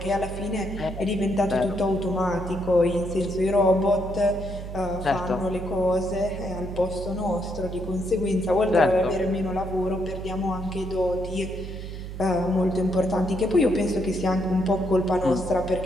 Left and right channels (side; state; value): right; noise; hum, 9 dB below the sound